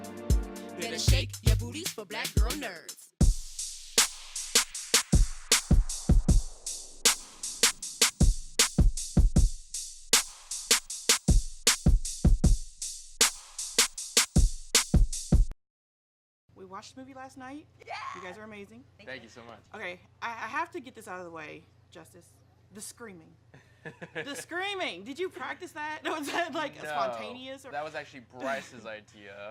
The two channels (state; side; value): identical; both; correlation 1.00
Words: Better shake your booties for black girl nerds. We watched the movie last night. Yeah. You guys are amazing. Thank you so much. Okay, I have to get this out of the way, Justice. The screaming. The screaming. Did you practice that? Was that like spontaneous? Or? That was actually Bryce's